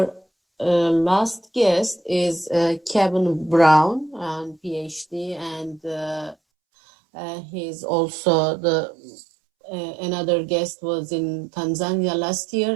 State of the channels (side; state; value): left; drops out; at 6.4 s